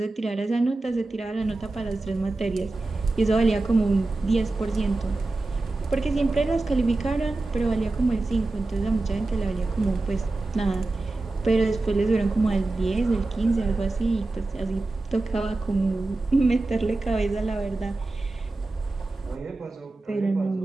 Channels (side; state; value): left; quieter; 3.1 dB